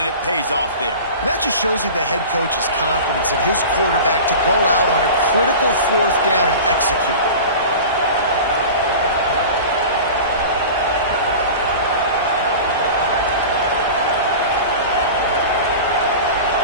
it pays off there. And that just shows you the head coach's confidence in his quarterback to go out on a critical fourth down and execute.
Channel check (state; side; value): inverted; both; correlation -0.34